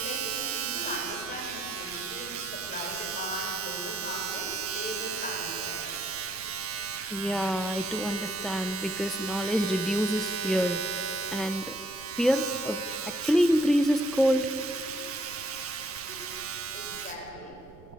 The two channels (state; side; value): noise; right; rumble, 21 dB below the sound